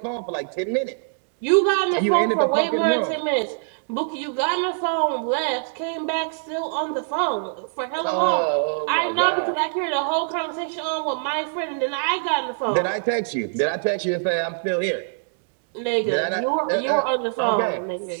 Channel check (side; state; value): left; silent; digital silence